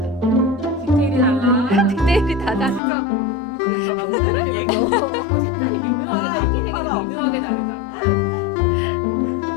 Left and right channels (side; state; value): right; drops out; at 2.8 s